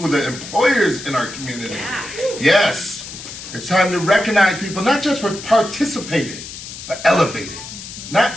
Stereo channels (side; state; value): left; noise; hiss, 12 dB below the sound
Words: the employers in our community. Yeah. Yes, it's time to recognize people not just for participating, but elevating.